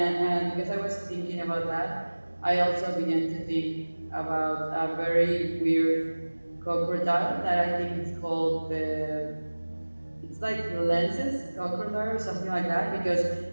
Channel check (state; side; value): inverted; both; correlation -1.00